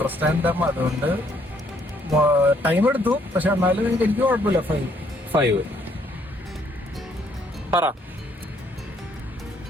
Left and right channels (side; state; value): both; normal; correlation 0.67